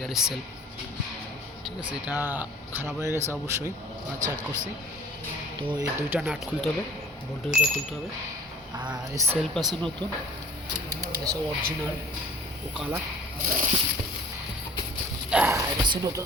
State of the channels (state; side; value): normal; both; correlation 0.49